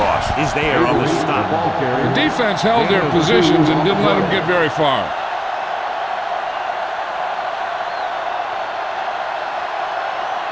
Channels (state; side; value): identical; both; correlation 1.00